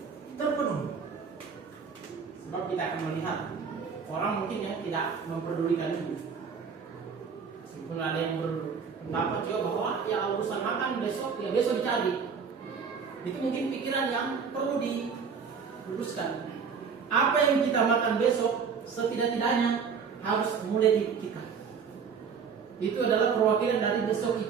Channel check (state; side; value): quieter; left; 6.1 dB